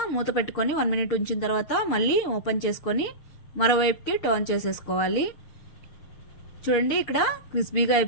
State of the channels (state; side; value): late; right; 6.6 ms